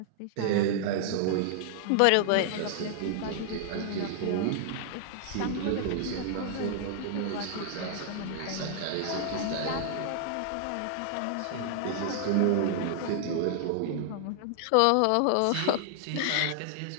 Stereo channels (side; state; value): both; different; correlation -0.01